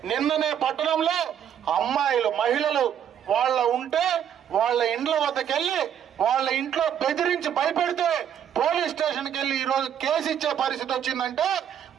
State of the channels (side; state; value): left; quieter; 9.2 dB